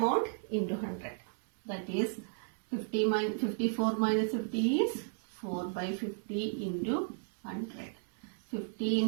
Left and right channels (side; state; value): left; silent; 55 dB below the other